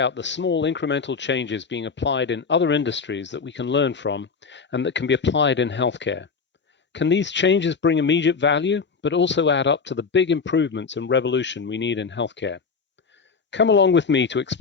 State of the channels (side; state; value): right; quieter; 5.2 dB